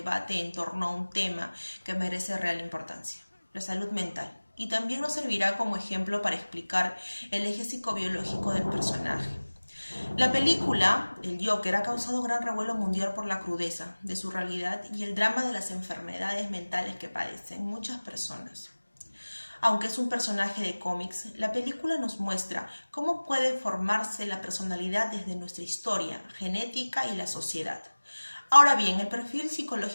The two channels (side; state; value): both; inverted; correlation -1.00